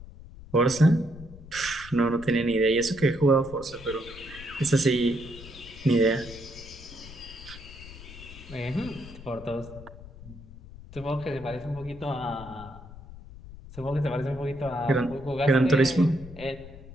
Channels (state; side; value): noise; left; rumble, 16 dB below the sound